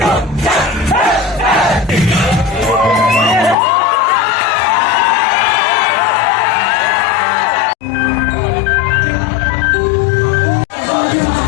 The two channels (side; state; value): right; drops out; at 3.6 s